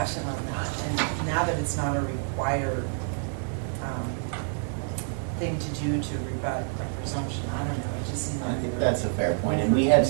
on that, and now that it's not a required thing to do to rebut a presumption, I don't know, it just seems I like. think that's a fair point. And we had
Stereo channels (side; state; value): left; silent; 60 dB below the other